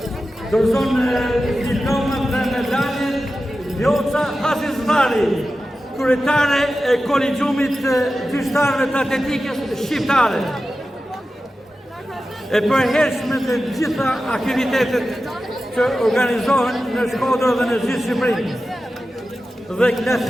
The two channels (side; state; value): both; normal; correlation 0.93